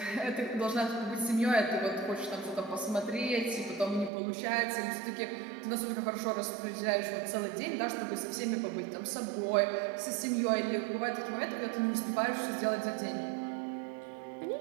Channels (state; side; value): drops out; left; at 4.1 s